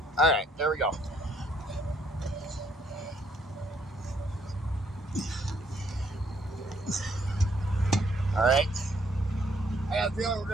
All right, there we go. All right. I got a feeling we're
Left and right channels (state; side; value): normal; both; correlation 0.68